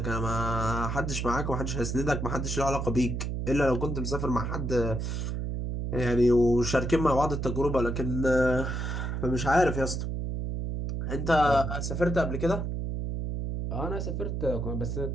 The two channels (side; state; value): right; noise; hum, 2 dB below the sound